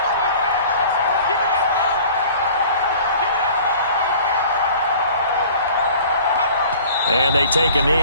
And they take a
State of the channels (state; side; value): inverted; both; correlation -0.47